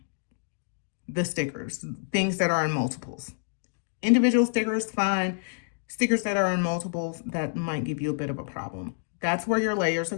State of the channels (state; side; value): silent; right; digital silence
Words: the stickers, things that are in multiples. Individual stickers, fine. Stickers that are in multiples, that might give you a bit of a problem. That's where your layers are